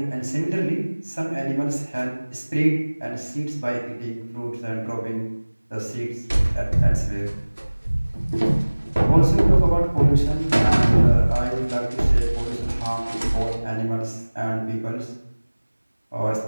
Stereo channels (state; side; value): inverted; both; correlation -1.00